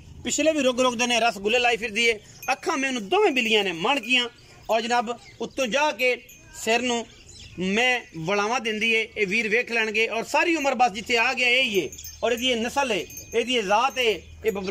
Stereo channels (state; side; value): identical; both; correlation 1.00